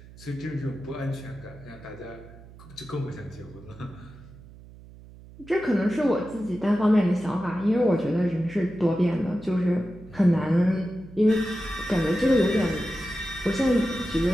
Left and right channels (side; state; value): right; noise; hum, 20 dB below the sound